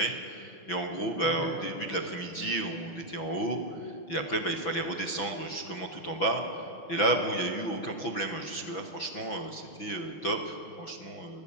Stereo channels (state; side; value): late; right; 6.0 ms